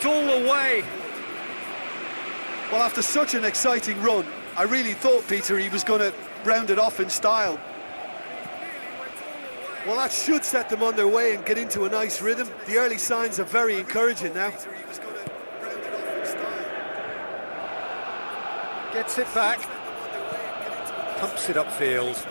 all the way. Well, after such an exciting run, I really thought, Peter, he was going to round it off in style. Well, that should set them on their way and get into a nice rhythm. The early signs are very encouraging now. Gets it back. Pumps it upfield.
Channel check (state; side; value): inverted; both; correlation -1.00